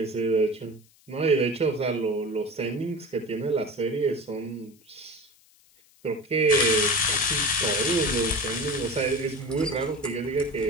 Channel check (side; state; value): left; noise; hiss, 30 dB below the sound